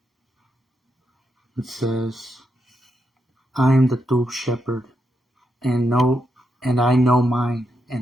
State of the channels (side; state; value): both; normal; correlation 0.83